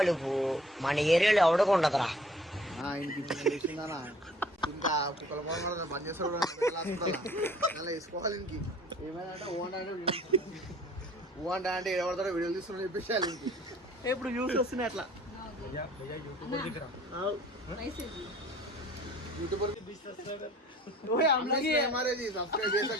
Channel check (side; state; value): both; normal; correlation 0.53